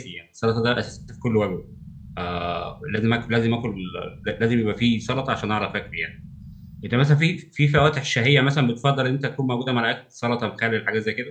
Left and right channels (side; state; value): both; identical; correlation 1.00